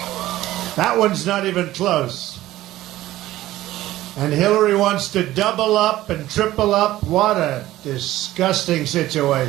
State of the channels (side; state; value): left; quieter; 15.4 dB